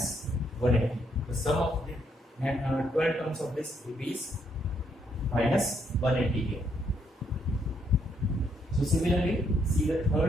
180. The sum of the 12 terms of this is minus 180 here. So similarly, see the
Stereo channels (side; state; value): both; normal; correlation 0.73